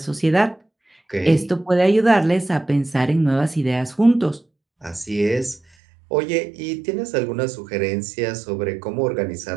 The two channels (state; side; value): drops out; left; at 5.6 s